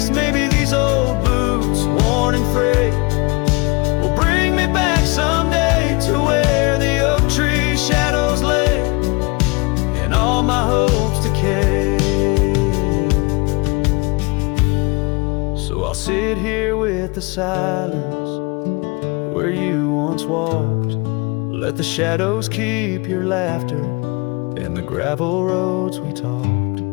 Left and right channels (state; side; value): quieter; right; 27.5 dB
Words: Maybe these old boots, worn and frayed, will bring me back someday to where the oak tree shadows lay and all my hopes decay. So I'll sit here with the silence where you once walked. Let the shadows keep your laughter and the gravel roads we talked.